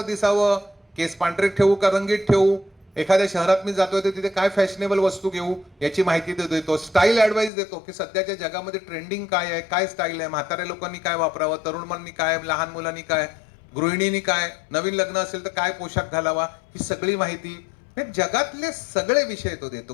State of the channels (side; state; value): right; drops out; at 7.5 s